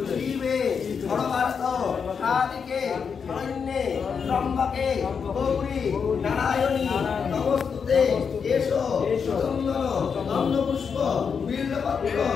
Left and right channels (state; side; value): quieter; right; 6.3 dB